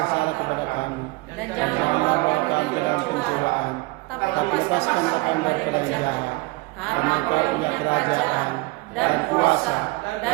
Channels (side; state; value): left; quieter; 23.3 dB